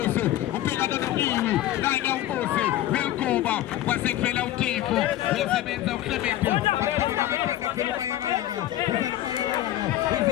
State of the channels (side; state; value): right; quieter; 13.6 dB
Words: ubheka noNokiwe kanye ubuso welgoba kwasekuvela utifo wesebenza uClement bahlaba ngamakhanda phela umayakayaka uzayimayakayaka